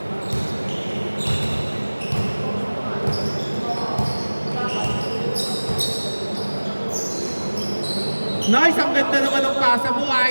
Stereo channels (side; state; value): both; inverted; correlation -1.00